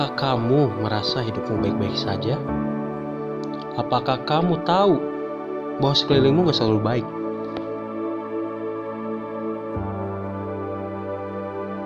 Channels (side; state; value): both; identical; correlation 1.00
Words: kamu merasa hidupmu baik-baik saja? Apakah kamu tahu bahwa sekelilingmu gak selalu baik?